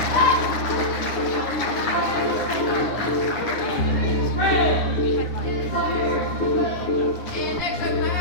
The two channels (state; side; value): late; right; 9.8 ms